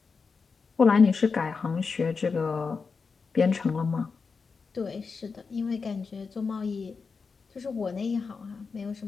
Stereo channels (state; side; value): quieter; right; 4.9 dB